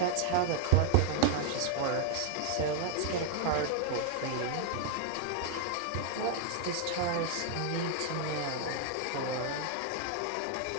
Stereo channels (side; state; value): both; different; correlation 0.00